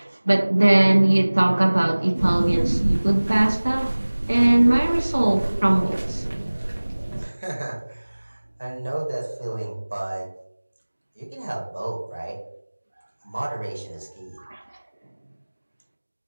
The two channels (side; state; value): both; inverted; correlation -1.00